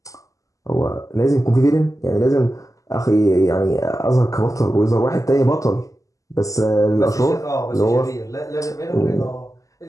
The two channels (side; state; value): right; late; 0.16 ms